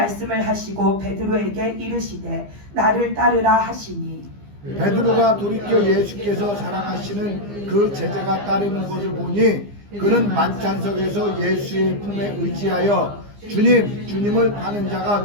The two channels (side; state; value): left; late; 15 ms